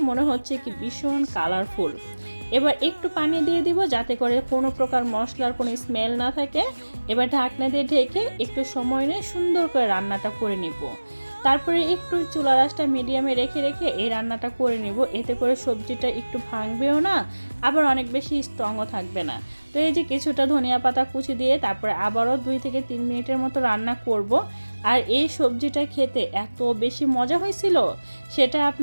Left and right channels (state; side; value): inverted; both; correlation -1.00